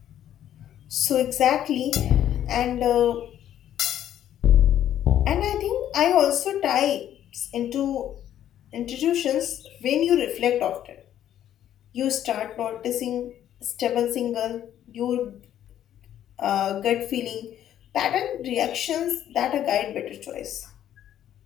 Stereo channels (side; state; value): right; quieter; 11.1 dB